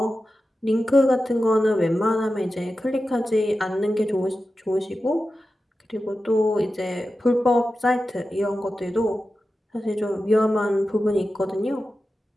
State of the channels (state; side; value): normal; both; correlation 0.93